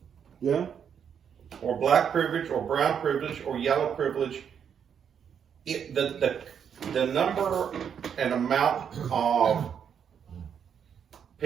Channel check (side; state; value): left; quieter; 7.8 dB